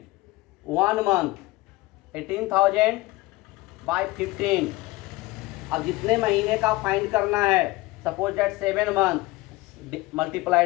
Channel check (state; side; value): quieter; right; 20.4 dB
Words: 1 month 18,000 by 15। अब जितने महीने का फाइंड करना है, suppose that 7 month